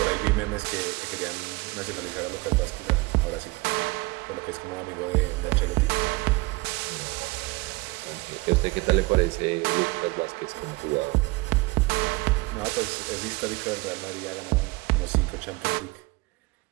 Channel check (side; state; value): left; quieter; 24.2 dB